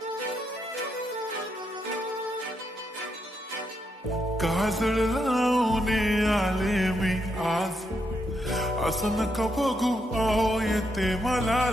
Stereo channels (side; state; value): both; normal; correlation 0.80